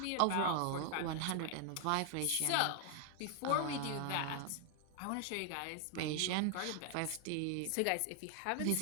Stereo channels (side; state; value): both; different; correlation 0.00